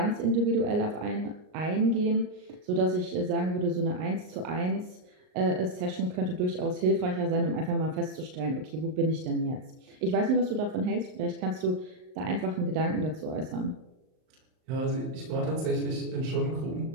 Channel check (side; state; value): left; late; 39 ms